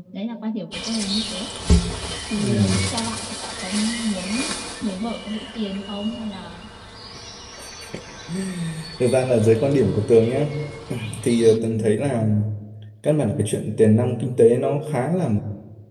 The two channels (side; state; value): both; identical; correlation 1.00